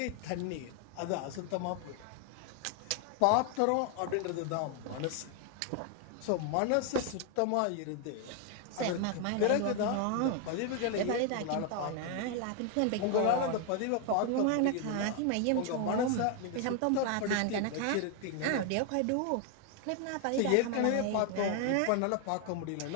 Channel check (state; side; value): different; both; correlation 0.00